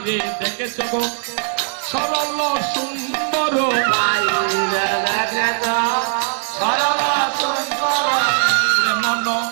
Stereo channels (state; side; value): silent; left; 59 dB below the other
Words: দেখেছ গো সরল সুন্দর, বাহিরে দেখেছ সরল সুন্দর, মন